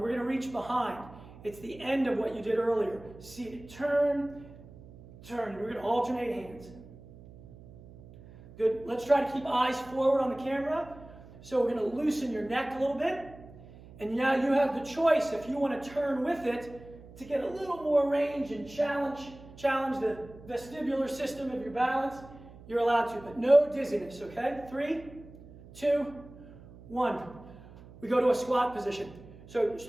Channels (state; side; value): noise; right; hum, 19 dB below the sound